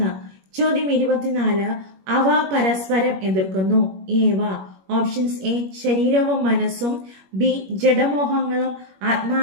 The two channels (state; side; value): late; left; 21 ms